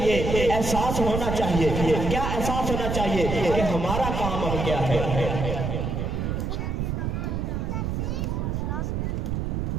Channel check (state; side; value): noise; right; rumble, 1 dB below the sound